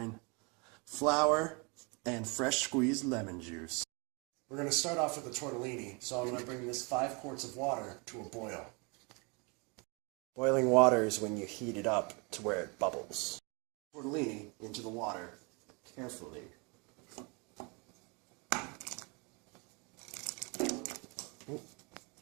flour, and fresh squeezed lemon juice. We're going to start off with the tortellini, so I'm going to bring this 5 quarts of water to a boil. Boiling water is when you heat it up to where it bubbles. Tortellini into the water carefully. Ooh.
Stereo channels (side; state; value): left; quieter; 31.1 dB